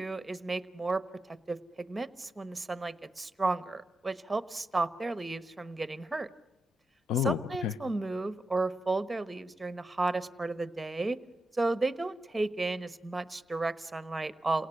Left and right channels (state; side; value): normal; both; correlation 0.88